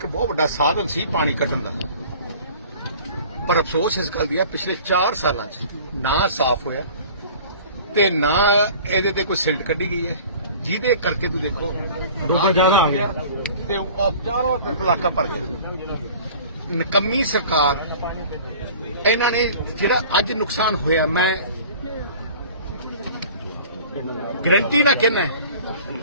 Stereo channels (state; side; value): inverted; both; correlation -0.45